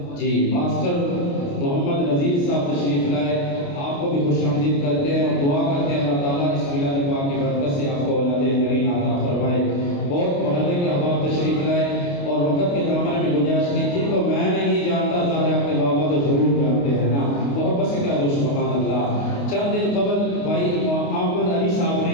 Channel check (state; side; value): late; right; 28 ms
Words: محمد نذیر صاحب تشریف لائے، آپ کو بھی خوش آمدید کرتے ہیں اور دعا کرتے ہیں اللہ تعالیٰ اس میلاد پاک کی برکت سے آپ کو اولاد کریم عطا فرمائے۔ بہت محلے کے احباب تشریف لائے اور وقت کے دامن میں گنجائش نہیں، جن کو میں نہیں جانتا ظاہر اپنے بابا تو ضرور جانتے ہیں نا، محبت سے کہہ دو سبحان اللہ۔ چند دن قبل بھائی احمد علی صاحب